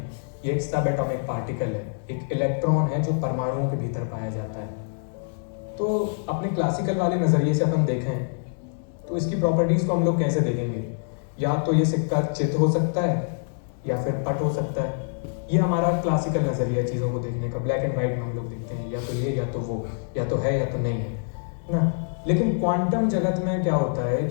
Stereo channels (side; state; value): right; silent; digital silence